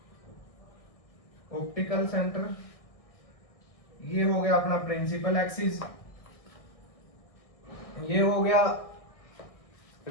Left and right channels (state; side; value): late; right; 1.6 ms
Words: ऑप्टिकल सेंटर। ये हो गया अपना प्रिंसिपल एक्सिस, ये हो गया